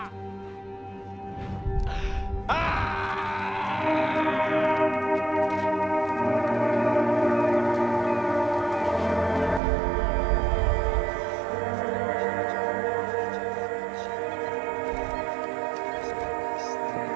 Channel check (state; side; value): drops out; left; at 9.6 s